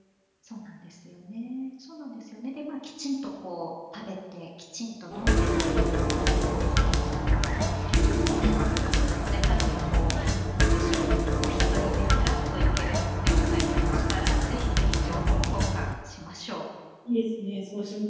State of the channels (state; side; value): identical; both; correlation 1.00